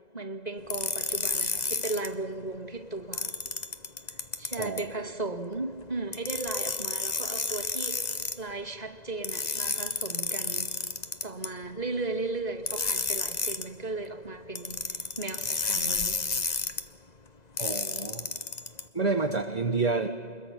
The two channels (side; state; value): right; late; 2.0 ms